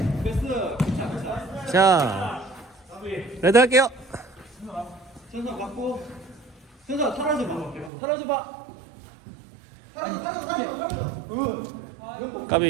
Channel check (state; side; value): drops out; left; at 7.9 s